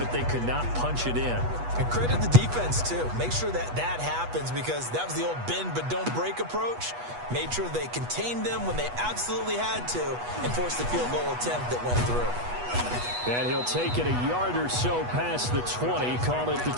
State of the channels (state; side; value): late; left; 8.2 ms